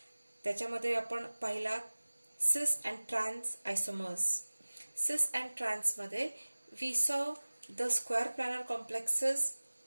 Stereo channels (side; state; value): both; inverted; correlation -1.00